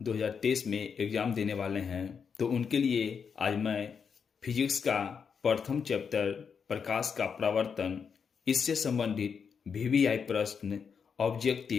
2023 में एग्ज़ाम देने वाले हैं, तो उनके लिए आज मैं फिजिक्स का प्रथम चैप्टर प्रकाश का प्रवर्तन, इससे संबंधित वीवीआई प्रश्न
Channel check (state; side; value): quieter; right; 6.4 dB